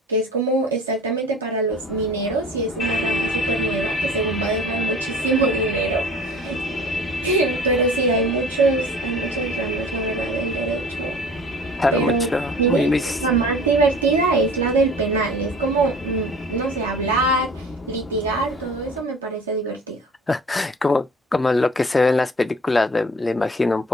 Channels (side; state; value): both; normal; correlation 0.44